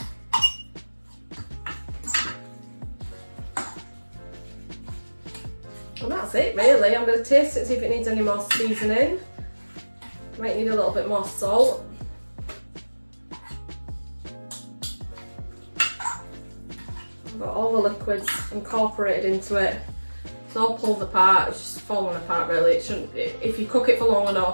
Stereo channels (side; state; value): both; inverted; correlation -1.00